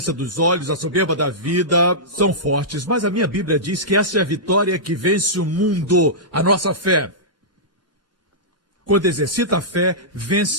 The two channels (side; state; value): both; normal; correlation -0.15